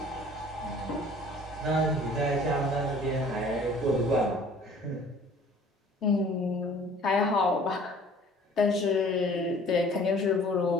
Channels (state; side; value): normal; both; correlation 0.51